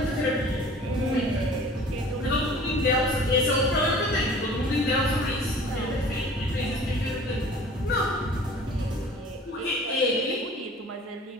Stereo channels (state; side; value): normal; both; correlation 0.46